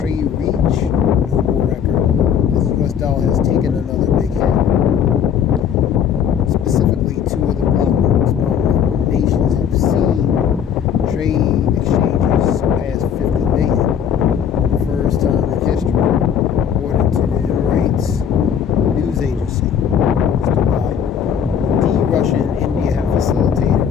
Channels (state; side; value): quieter; right; 8.2 dB